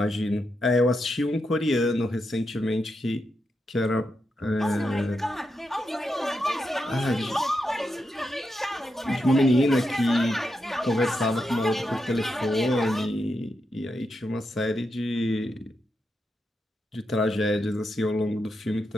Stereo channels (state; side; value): normal; both; correlation 0.85